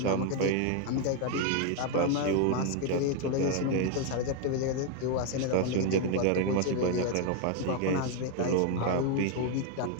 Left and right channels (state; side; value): different; both; correlation 0.01